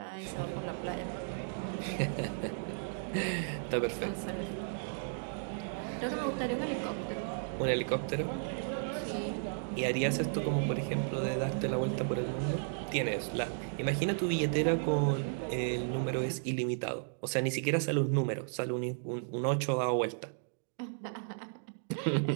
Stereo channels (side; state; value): left; silent; digital silence